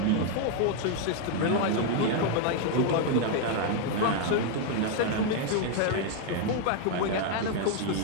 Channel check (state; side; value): different; both; correlation 0.01